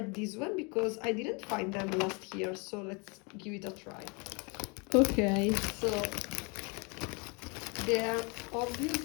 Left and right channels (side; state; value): right; quieter; 31.4 dB